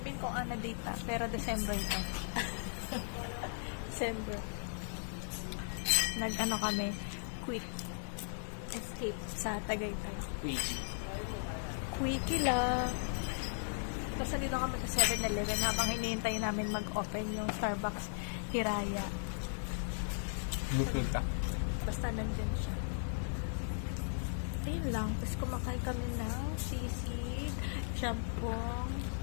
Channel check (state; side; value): silent; right; digital silence